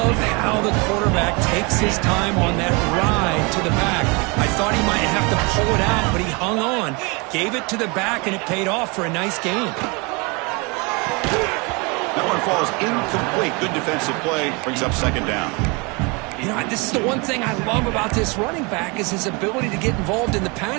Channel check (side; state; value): left; quieter; 29.0 dB